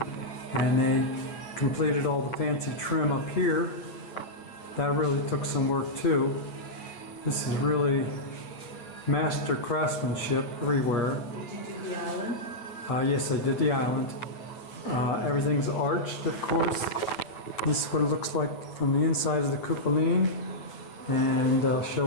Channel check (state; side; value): late; right; 8.7 ms